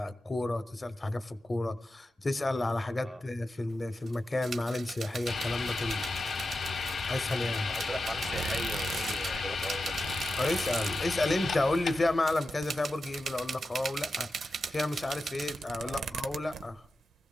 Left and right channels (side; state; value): both; normal; correlation 0.91